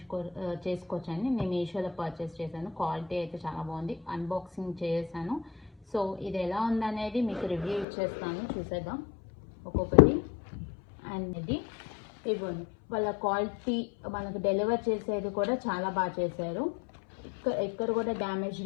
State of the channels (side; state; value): right; drops out; at 7.9 s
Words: చేసుకోవచ్చండి. నేను మీషోలో పర్చేస్ చేశాను. క్వాలిటీ అయితే చాలా బాగుంది. అన్బాక్సింగ్ చేశాను. సో ఇది ఎలా ఉందనేది మీకు రివ్యూ ఇచ్చేస్తాను, చూసేద్దాం ఒక్కొక్కటి. అండ్ ఇది ఇవ్వండి, వాళ్ళ క్వాలిటీ మనకు డెలివర్ చేసేది కూడా చాలా బాగా చేశారు. ఎక్కడ కూడా డ్యామేజ్